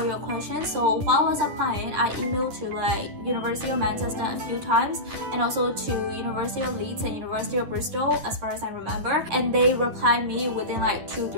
your questions. So while I was applying, I emailed to like University of Manchester a few times and also to University of Leeds and University of Bristol as far as I remember, and they replied me within like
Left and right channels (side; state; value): left; late; 10 ms